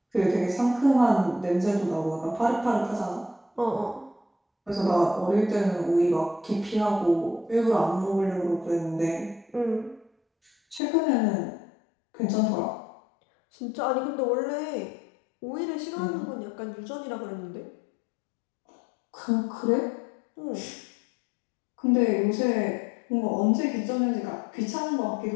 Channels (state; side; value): drops out; right; at 10.8 s